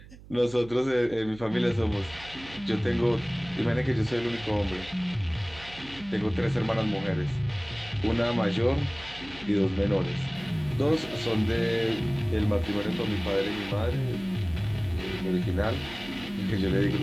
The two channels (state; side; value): noise; right; hum, 19 dB below the sound